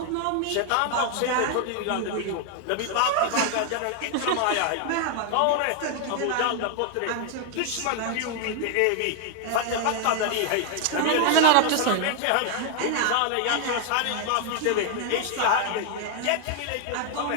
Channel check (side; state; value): both; different; correlation 0.00